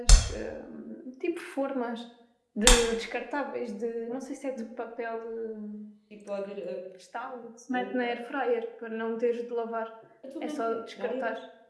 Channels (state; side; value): identical; both; correlation 1.00